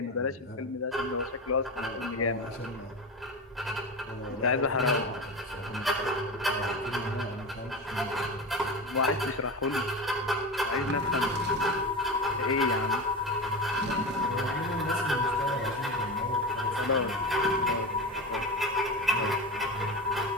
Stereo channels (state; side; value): normal; both; correlation 0.24